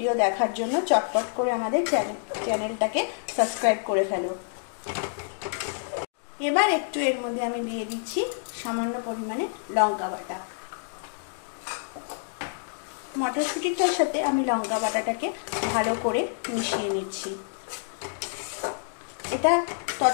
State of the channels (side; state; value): right; silent; digital silence